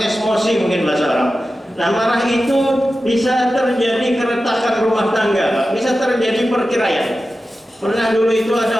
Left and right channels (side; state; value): both; normal; correlation 0.93